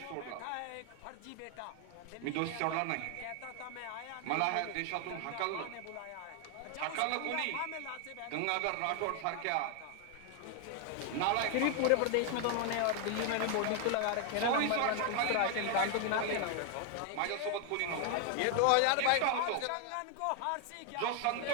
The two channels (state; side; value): different; both; correlation 0.00